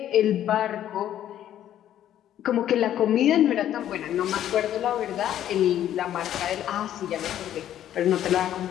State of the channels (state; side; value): quieter; right; 11.4 dB